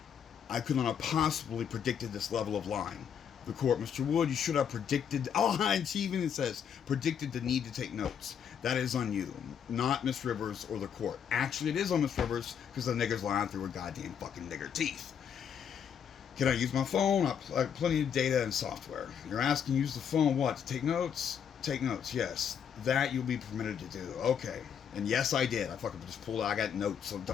I could not have possibly predicted this level of lying. The court, Mr. Wood, you should have predicted, and she even says, predicted the need to take notes. That is on you, not Miss Rivers or the court. Actually, it is on Miss Rivers, because the nigger's lying through her goddamn fucking nigger teeth. Can I use my phone? I have plenty of data and software. You're asking, use the phone, what, to take notes? Take notes, yes. That you'll be permitted to do. Okay. And yes, I did. I fucking just pulled out, I got notes of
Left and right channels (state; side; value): quieter; right; 8.0 dB